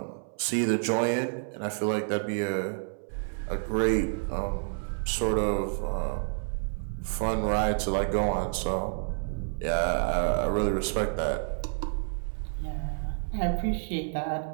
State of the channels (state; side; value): silent; left; 58 dB below the other